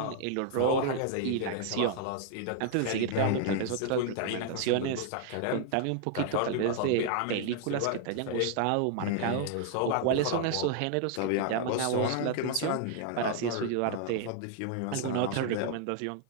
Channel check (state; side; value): different; both; correlation 0.00